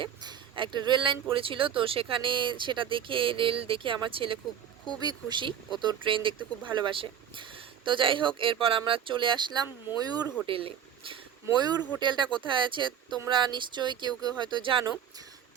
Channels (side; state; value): left; quieter; 8.9 dB